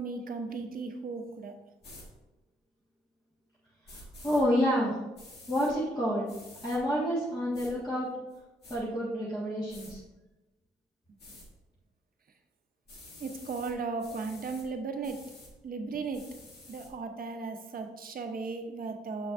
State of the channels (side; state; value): both; normal; correlation 0.69